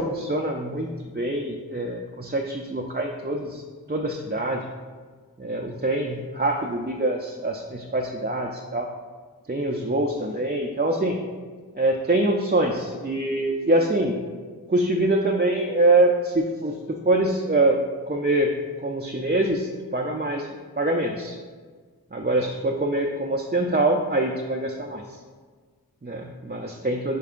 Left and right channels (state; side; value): normal; both; correlation 0.11